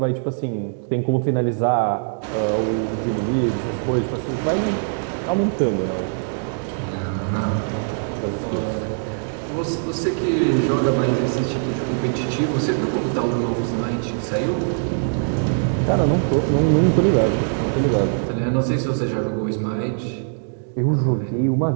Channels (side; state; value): left; silent; digital silence